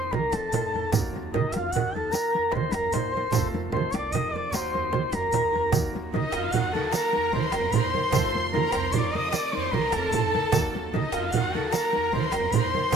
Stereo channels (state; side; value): normal; both; correlation 0.63